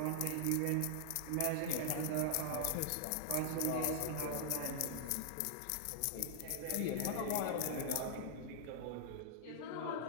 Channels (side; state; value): both; different; correlation -0.01